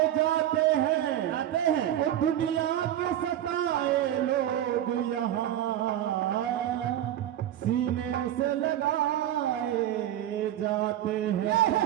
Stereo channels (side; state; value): left; quieter; 11.9 dB